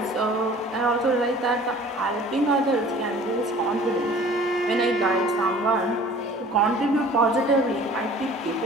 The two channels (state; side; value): normal; both; correlation 0.48